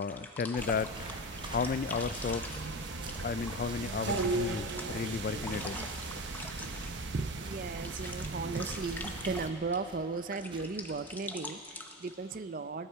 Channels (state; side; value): normal; both; correlation 0.25